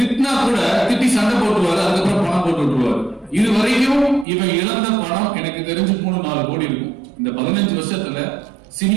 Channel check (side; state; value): left; drops out; at 4.2 s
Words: கூட திட்டி சண்டை போட்டுருவாரு, அதுக்கப்புறம் பணம் போட்டு விட்டுருவாரு. இது வரைக்கும் இவன் இழந்த பணம் எனக்கு தெரிஞ்சு 3-4 கோடி இருக்கும். இந்த 15 வருஷத்துல